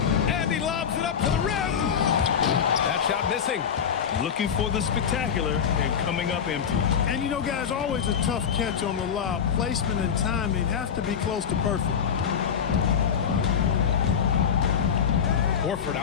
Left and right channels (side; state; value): right; quieter; 7.6 dB